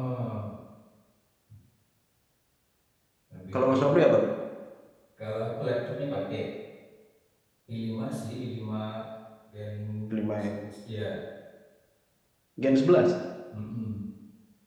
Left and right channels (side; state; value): both; identical; correlation 1.00